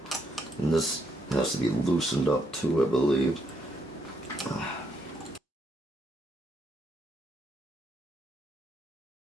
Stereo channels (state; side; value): normal; both; correlation 0.76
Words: And this has to be loosened up too, I believe.